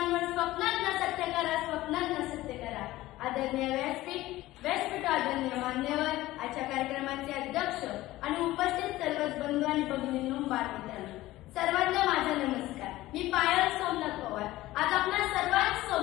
स्वप्नांना सत्य करा, स्वप्नांना सत्य करा. आदरणीय व्यासपीठ आदरणीय मान्यवर, आजच्या कार्यक्रमाचे अध्यक्ष आणि उपस्थित सर्वच बंधू आणि भगिनींनो, बालमित्रांनो, सर्वांना माझा नमस्कार. मी पायल सोमनाथ पवार आज आपल्या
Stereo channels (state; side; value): quieter; right; 16.9 dB